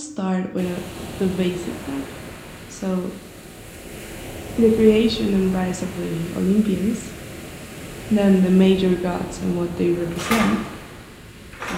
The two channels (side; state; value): both; identical; correlation 1.00